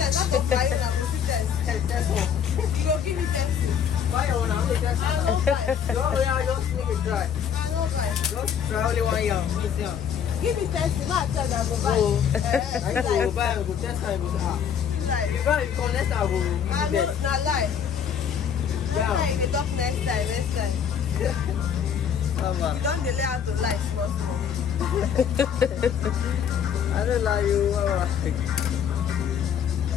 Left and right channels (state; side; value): quieter; right; 8.0 dB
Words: not for fire. That one. You go give me pencil. Fire one. I'm going that one. I don't buy. Yeah, just make it dry. I don't go buy. Just try only 1 year. Miss yam. Give me 10, not tell them I go buy. So, I Like, go buy, I go test, I go ah. like, If I come next time, I go I give know, it. not lie. Yeah. Like, they talk next time. You don't delay how to lie, small. I don't lie you.